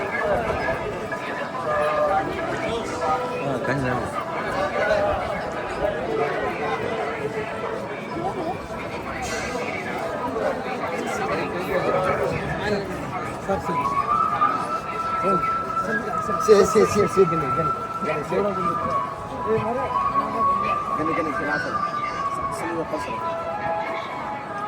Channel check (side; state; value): both; identical; correlation 1.00